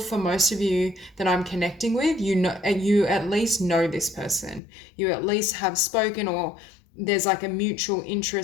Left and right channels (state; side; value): drops out; right; at 4.6 s